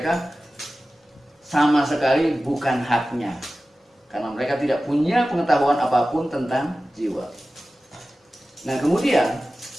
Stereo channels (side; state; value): both; normal; correlation 0.95